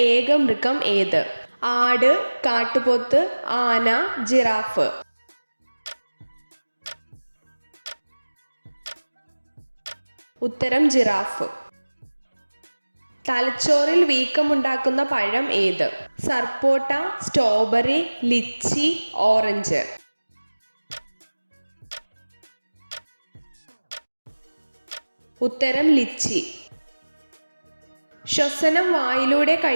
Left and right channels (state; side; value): inverted; both; correlation -1.00